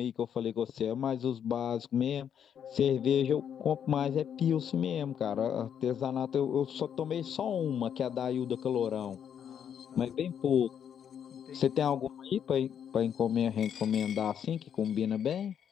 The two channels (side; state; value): right; quieter; 8.6 dB